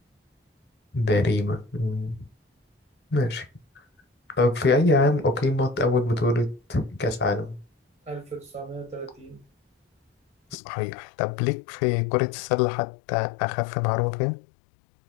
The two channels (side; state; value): right; drops out; at 10.6 s